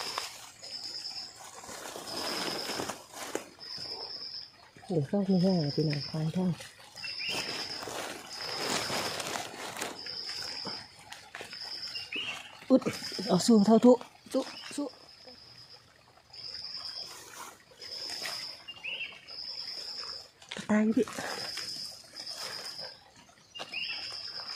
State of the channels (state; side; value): identical; both; correlation 1.00